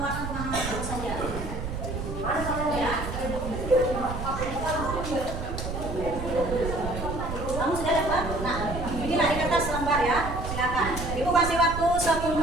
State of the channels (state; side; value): noise; right; rumble, 6 dB below the sound